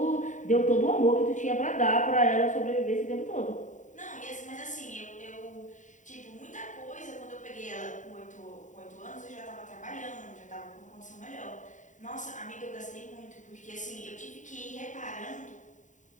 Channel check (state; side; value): late; right; 0.36 ms